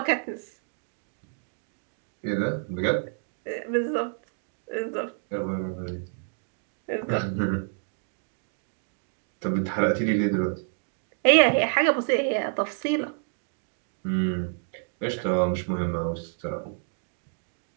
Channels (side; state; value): left; silent; digital silence